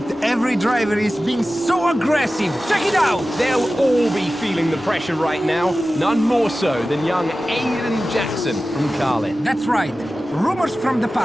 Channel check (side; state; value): both; normal; correlation 0.95